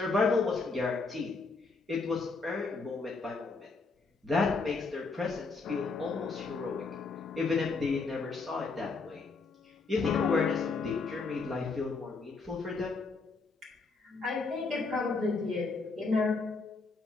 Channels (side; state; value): right; quieter; 4.1 dB